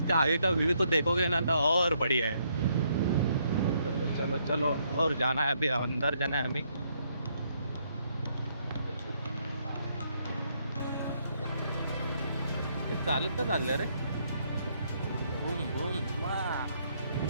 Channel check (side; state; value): both; inverted; correlation -0.72